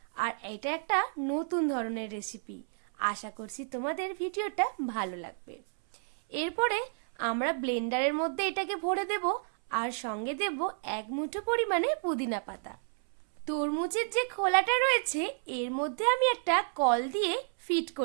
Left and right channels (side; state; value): left; silent; 57 dB below the other